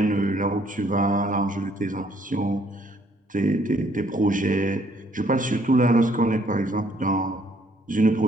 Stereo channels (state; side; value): normal; both; correlation 0.65